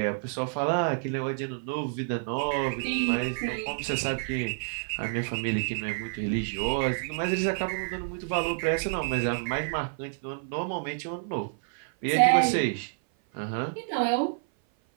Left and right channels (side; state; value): left; silent; 55 dB below the other